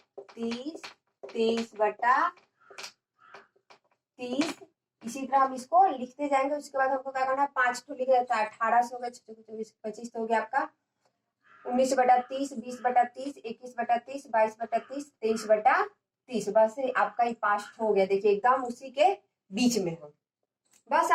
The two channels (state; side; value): identical; both; correlation 1.00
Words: 23/30। इसी तरह हम इसको लिखते जाएंगे। उसके बाद हमको क्या करना है 5 तो लिख देता है 18 से हो गया 24 25 तो हो गया आपका 19/30 20/30 21/30 22/30 23/30। बस आपका ये 5 हो गया। देखिए एकदम उसी के बीच में हो। बस